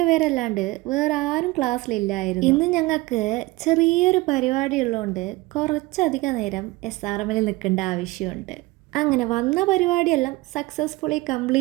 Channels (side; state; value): left; quieter; 21.0 dB